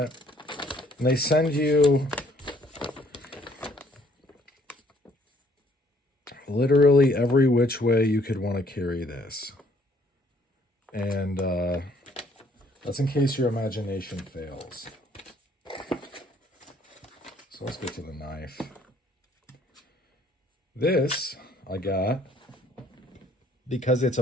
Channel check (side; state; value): both; normal; correlation 0.63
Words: And they send you literally every which way you could want to carry this. And that's in case your imagination fails. So let's get to the knife. This I got because it's